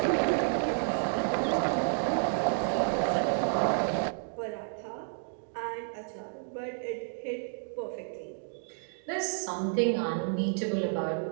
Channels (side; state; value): left; silent; 57 dB below the other